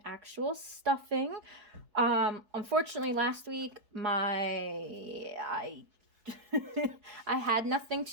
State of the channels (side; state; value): left; late; 4.7 ms